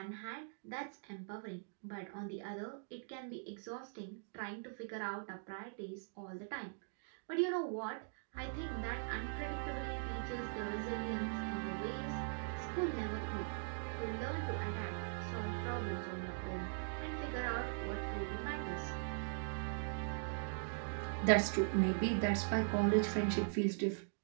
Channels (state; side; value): silent; left; digital silence